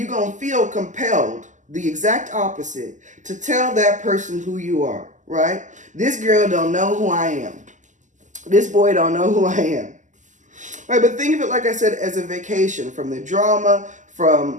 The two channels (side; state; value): left; late; 0.36 ms